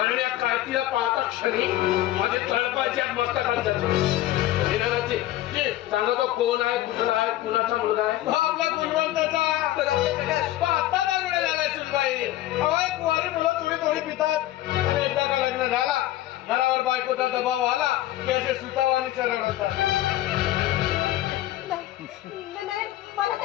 या कार्तीला पाहता क्षणी माझे तळपाच्या मस्तकात जाते. सांगा तो कोण आहे, कुठला आहे, कुणाचा मुलगा आहे? आपला गुणवंताचा पाहता दारुडे झालाय सुनबाई. अवाय कुवारी मुलं थोडी थोडी पितात आणि एकदा का लग्न झाला घरावर बायकोचा दबाव आला की असे सुतावानी सरळ होतात. मला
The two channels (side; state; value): right; quieter; 14.8 dB